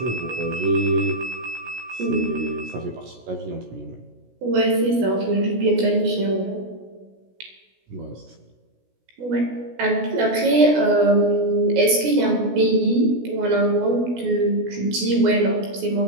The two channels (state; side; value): late; left; 16 ms